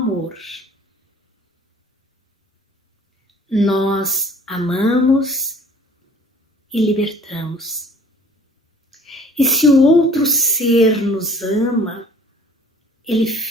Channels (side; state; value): both; normal; correlation 0.51